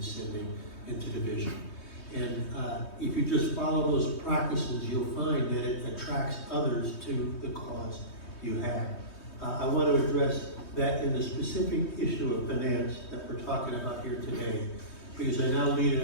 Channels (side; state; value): right; late; 3.2 ms